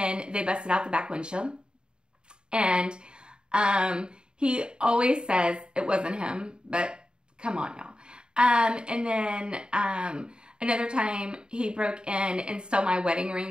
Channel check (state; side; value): late; left; 0.050 ms